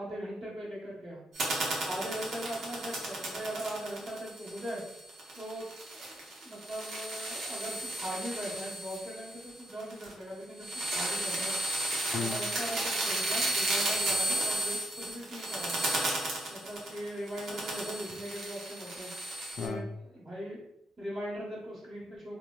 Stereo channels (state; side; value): normal; both; correlation 0.76